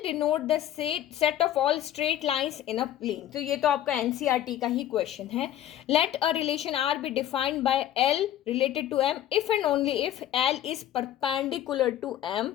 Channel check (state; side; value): quieter; right; 11.7 dB